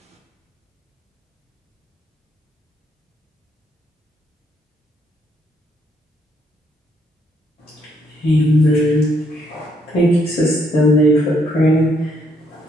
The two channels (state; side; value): normal; both; correlation 0.72